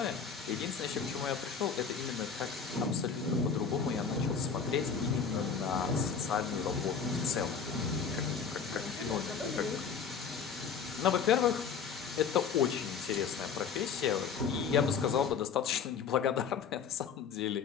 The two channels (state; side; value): quieter; right; 6.4 dB